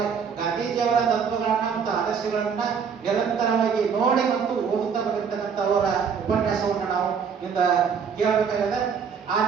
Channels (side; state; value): left; quieter; 6.6 dB